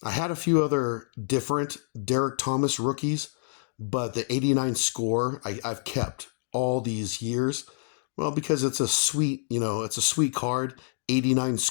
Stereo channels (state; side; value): silent; right; digital silence